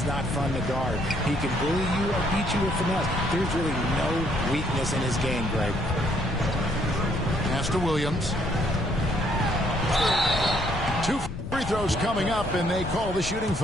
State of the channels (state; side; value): noise; left; rumble, 8 dB below the sound